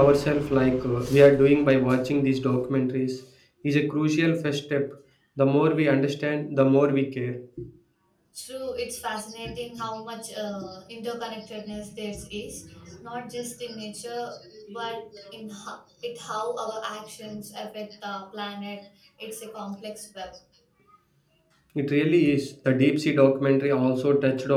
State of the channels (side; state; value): both; identical; correlation 1.00